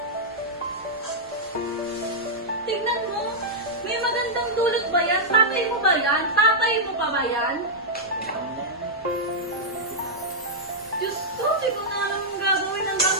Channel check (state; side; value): normal; both; correlation -0.08